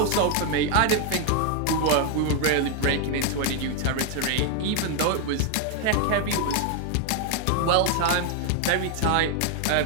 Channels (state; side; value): different; both; correlation 0.01